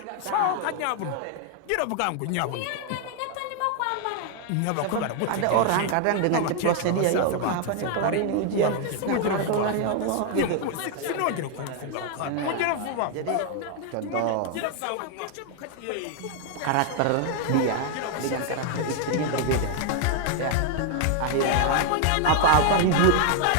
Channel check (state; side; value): different; both; correlation 0.00